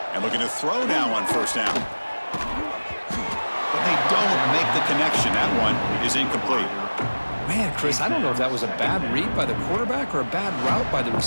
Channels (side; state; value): both; inverted; correlation -1.00